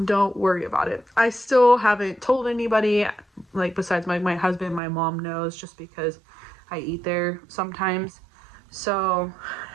don't worry about it. I still haven't told anybody, like besides my husband. My mom knows just because I eat there sometimes. So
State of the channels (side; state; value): left; drops out; at 4.8 s